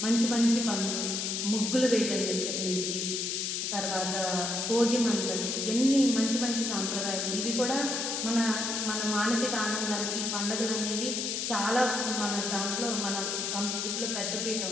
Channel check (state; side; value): noise; left; hiss, 1 dB below the sound